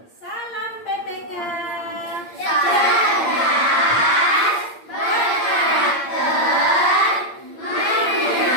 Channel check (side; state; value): right; late; 8.7 ms